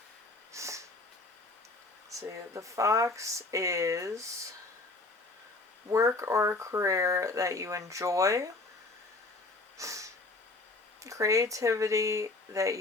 See, the fox is work or a career that you enjoy, creativity that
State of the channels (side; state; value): right; quieter; 3.2 dB